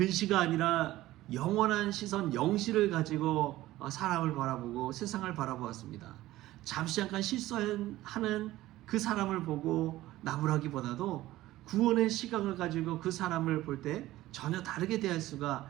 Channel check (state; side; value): quieter; left; 16.1 dB